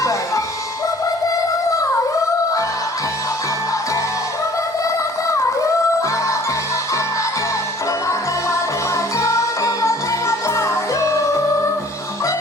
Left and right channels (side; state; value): both; normal; correlation 0.52